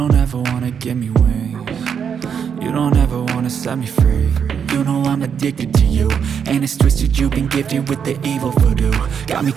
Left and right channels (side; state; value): left; quieter; 7.3 dB